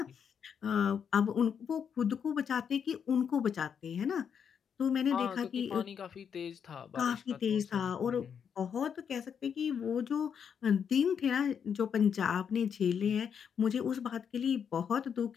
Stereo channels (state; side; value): quieter; right; 7.4 dB